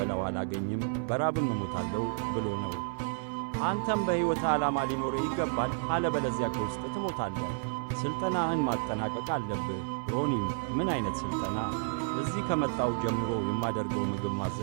አላገኝም፣ በራብም እሞታለሁ ብሎ ነው። አንተም በሕይወት ዓላማ ሊኖርህ ይገባል፣ አለበለዚያ ከውስጥ ትሞታለህ። ሥልጠናህን ማጠናቀቅ አለብህ። ሮኒም ምን ዓይነት ሥልጠና? እዚህ ከመጣው ጀምሮ የማደርገው ምግብ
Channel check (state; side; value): silent; left; 57 dB below the other